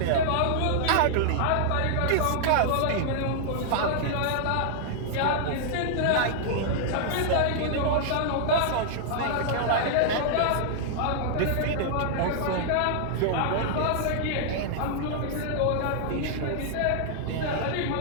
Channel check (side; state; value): both; different; correlation -0.01